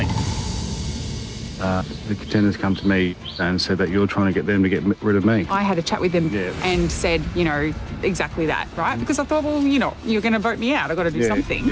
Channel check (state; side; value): identical; both; correlation 1.00